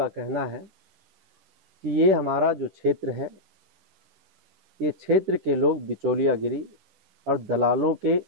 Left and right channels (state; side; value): late; left; 10 ms